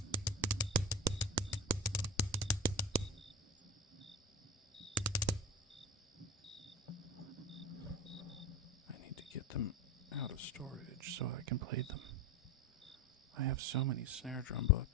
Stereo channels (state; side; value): normal; both; correlation 0.27